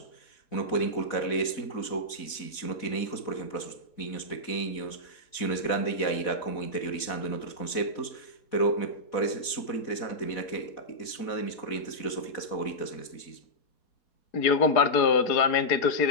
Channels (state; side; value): late; right; 4.1 ms